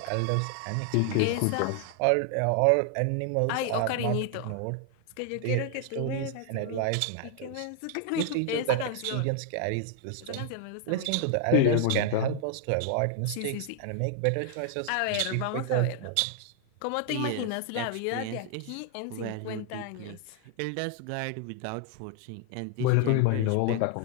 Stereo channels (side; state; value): both; different; correlation 0.00